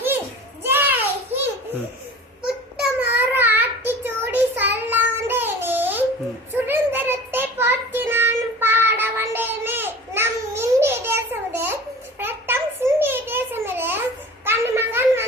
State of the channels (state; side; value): normal; both; correlation 0.39